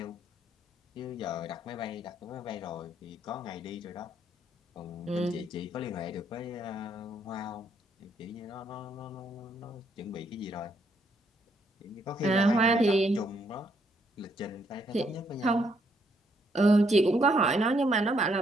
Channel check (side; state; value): both; normal; correlation 0.72